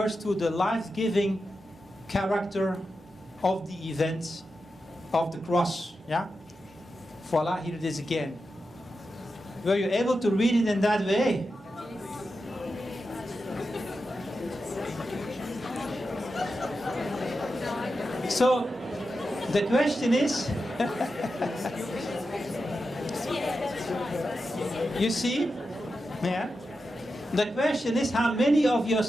to the life-giving character of the event of the cross. Yeah? Voila, here it is again. Were you able to read it in that way? So, the question is, you see? Yeah. The question is how many of your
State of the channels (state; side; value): normal; both; correlation 0.90